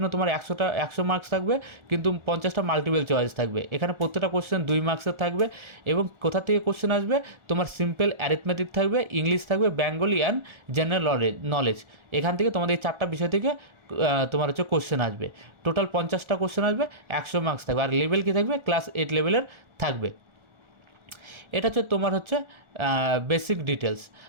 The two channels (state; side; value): late; left; 1.4 ms